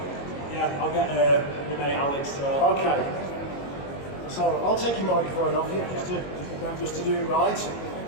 Yeah, I'll get my mate Alex to. Okay. So I'll take your microphone off you just to do it right.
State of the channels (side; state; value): right; late; 22 ms